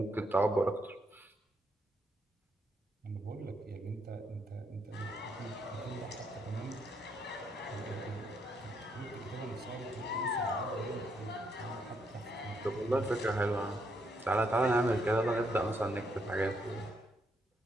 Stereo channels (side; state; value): both; normal; correlation 0.75